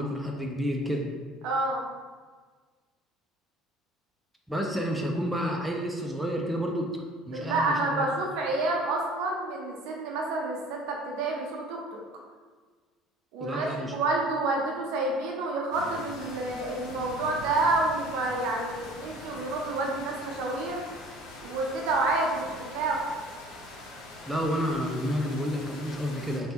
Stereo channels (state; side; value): normal; both; correlation 0.49